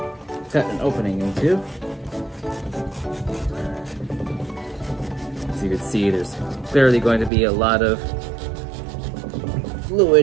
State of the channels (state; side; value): drops out; left; at 7.3 s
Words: cut an opening into. As you can see, there's clearly going to be a lot of